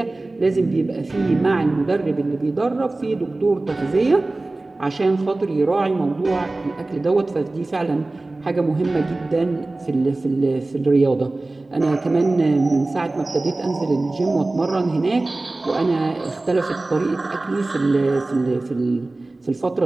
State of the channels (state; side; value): quieter; left; 3.0 dB